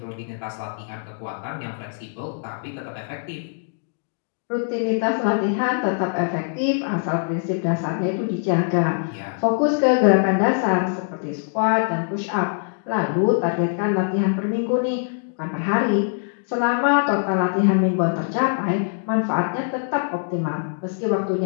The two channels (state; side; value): silent; right; digital silence